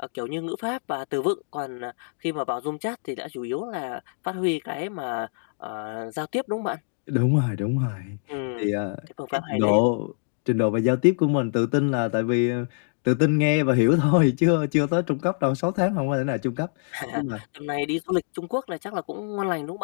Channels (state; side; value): silent; right; digital silence